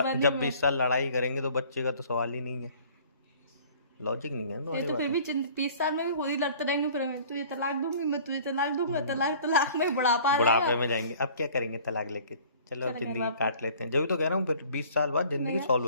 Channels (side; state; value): both; inverted; correlation -0.50